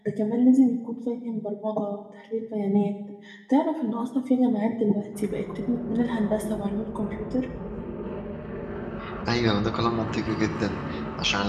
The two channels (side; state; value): both; identical; correlation 1.00